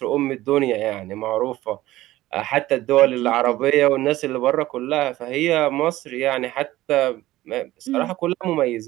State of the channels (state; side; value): quieter; left; 16.3 dB